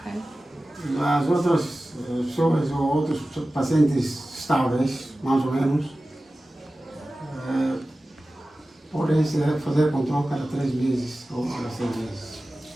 As outras pessoas ou outros pacientes estáveis, mais ou menos, podem fazer controle cada 3 meses ou cada 6 meses.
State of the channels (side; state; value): both; normal; correlation 0.96